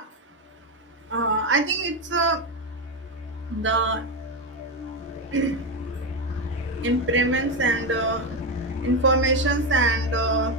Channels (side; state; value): both; normal; correlation 0.11